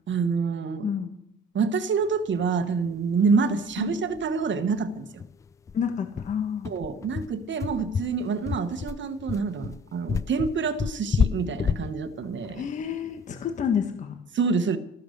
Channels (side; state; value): both; normal; correlation 0.48